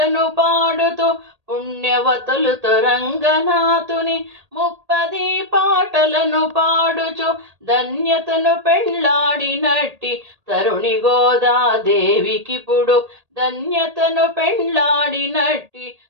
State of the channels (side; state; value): left; late; 1.8 ms